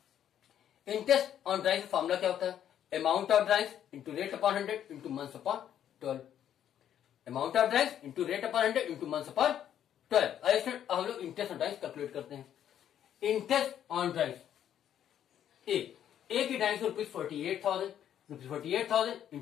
इंटरेस्ट ऑन ड्राइंग्स का फॉर्मूला क्या होता है? Amount of drawings into rate upon 100 into months upon 12। Amount of drawings into rate upon 100 into months upon 12। अब हम लोग इंटरेस्ट ऑन ड्राइंग्स कैलकुलेट करते हैं। इंटरेस्ट ऑन ड्राइंग्स ए की drawings ₹48,000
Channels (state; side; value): quieter; right; 10.2 dB